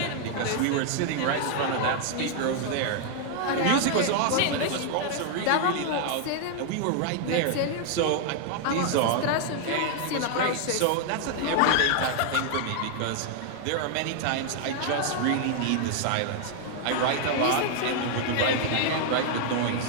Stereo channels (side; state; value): both; different; correlation 0.00